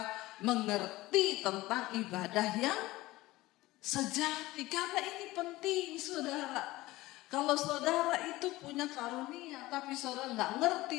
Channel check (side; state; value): right; quieter; 18.5 dB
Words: mengerti tentang ibadah yang sejati. Karena ini penting saudara. Kalau saudara itu punya karunia tapi saudara nggak